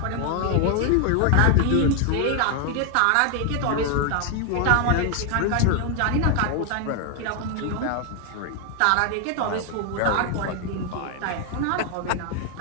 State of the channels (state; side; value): different; both; correlation 0.00